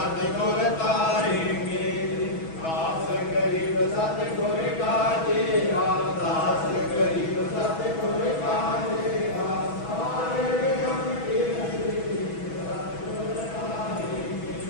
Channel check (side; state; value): right; late; 6.1 ms